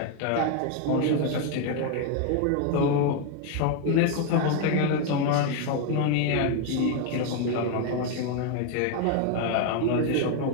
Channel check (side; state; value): both; different; correlation 0.01